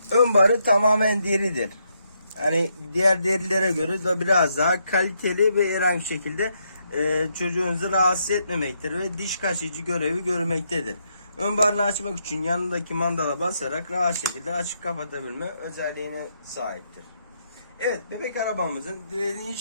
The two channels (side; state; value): both; inverted; correlation -0.78